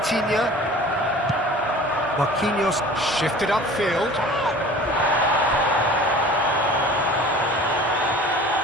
Marquinhos shifted upfield.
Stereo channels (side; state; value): both; normal; correlation 0.43